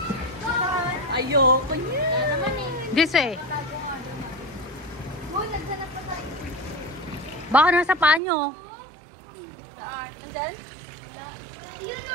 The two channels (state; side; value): drops out; left; at 8.2 s